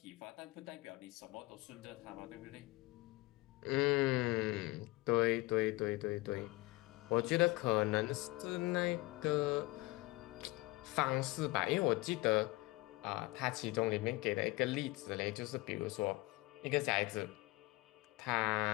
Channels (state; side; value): quieter; right; 21.4 dB